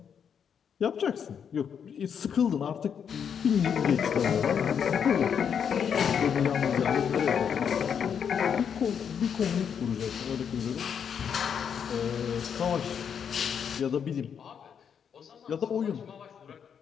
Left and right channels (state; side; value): quieter; right; 7.6 dB